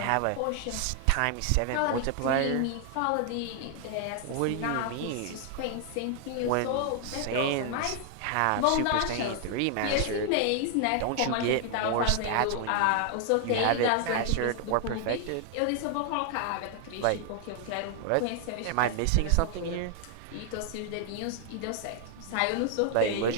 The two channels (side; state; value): both; different; correlation 0.00